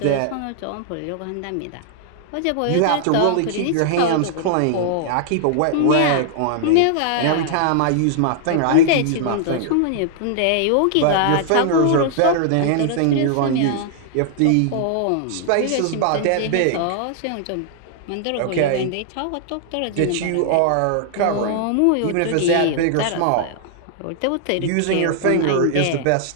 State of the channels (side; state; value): both; different; correlation -0.01